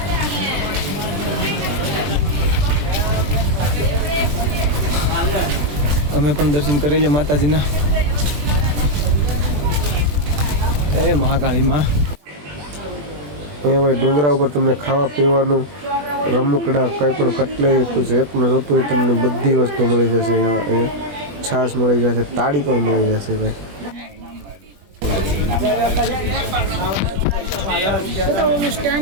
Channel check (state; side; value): late; left; 20 ms